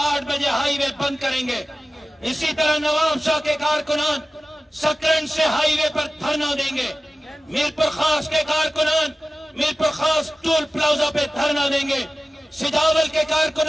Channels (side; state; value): both; normal; correlation 0.96